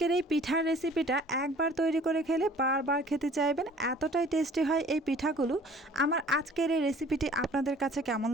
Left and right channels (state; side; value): normal; both; correlation 0.51